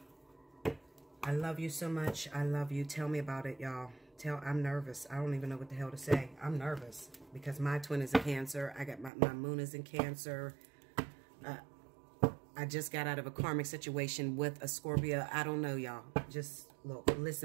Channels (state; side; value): drops out; left; at 9.1 s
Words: I love you so much. I love you. Tell me about it, y'all. I'm nervous. I don't even know what the hell to say. I'm nervous because my twin is a Cancer. I got my moon is in Cancer. I just got out of a karmic situation with a Scorpio. I don't know, y'all. Just look,